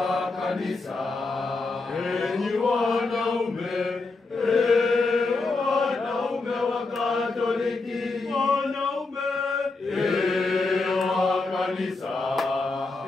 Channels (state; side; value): quieter; right; 3.6 dB